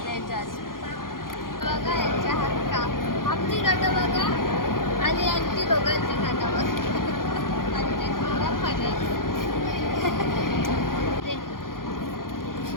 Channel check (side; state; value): right; late; 0.91 ms